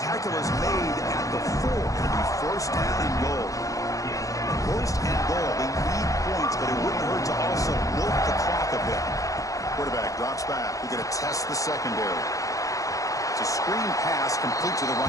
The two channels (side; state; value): right; late; 0.16 ms